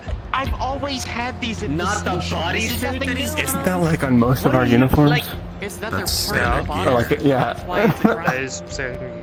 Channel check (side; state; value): both; identical; correlation 1.00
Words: I've always had these at Not the station. bodysuit This is nothing that he's- new. Isn't that like on most of our uniforms? Like, is that That's their part of standard the body? gear. Or like, yeah. That's why it's a crime. That is standard